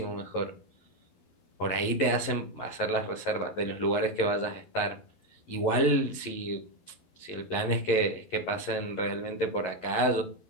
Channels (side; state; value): right; late; 11 ms